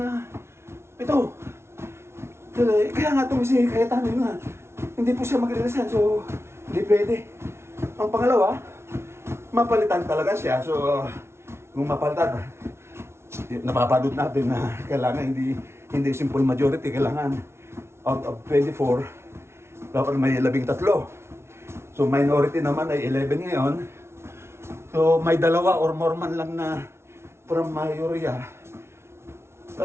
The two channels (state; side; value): late; left; 0.12 ms